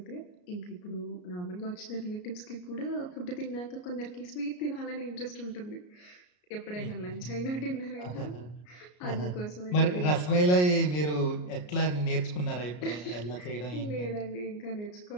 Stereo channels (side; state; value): right; late; 33 ms